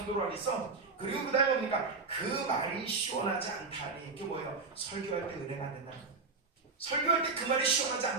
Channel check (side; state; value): left; quieter; 4.2 dB